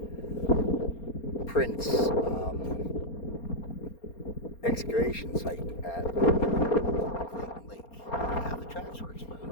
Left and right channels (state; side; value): late; right; 4.3 ms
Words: prints excavation site at Clayton Lake. Now the tracks were